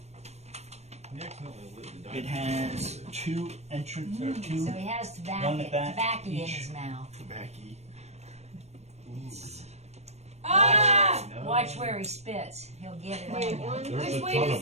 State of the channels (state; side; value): late; left; 0.31 ms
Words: He accidentally lit the It diamond. has two entrance or two. So he has One tobacco, at that tobacco in each. his mouth. Tobacco. Ah! No. Watch where he spits. He'll get it Wait, on you. one. There's Which a way ton does-